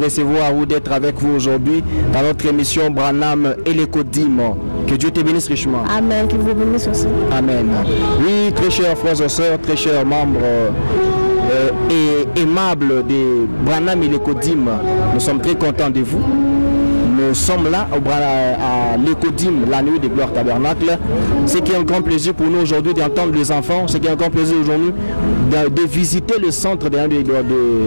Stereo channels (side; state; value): both; inverted; correlation -1.00